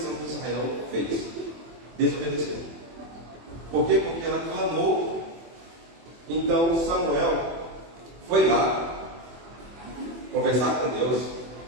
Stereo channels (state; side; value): late; left; 24 ms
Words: de Israel fez. Desobedeceu. Por quê? Porque ela clamou. Então Samuel foi lá conversar com Deus.